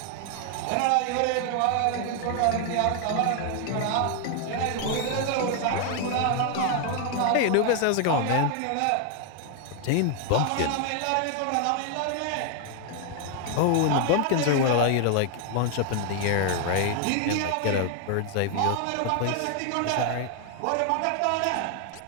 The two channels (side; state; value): both; different; correlation 0.00